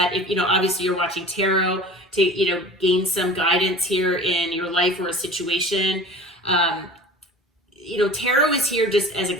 If, obviously you're watching tarot to, gain some guidance here in your life or a situation. Tarot is here just as a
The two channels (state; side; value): normal; both; correlation 0.40